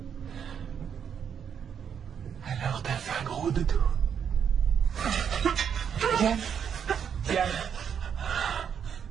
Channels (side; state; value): left; quieter; 7.8 dB